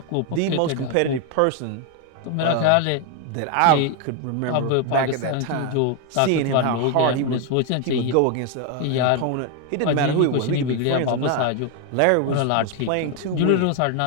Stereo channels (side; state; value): both; different; correlation 0.01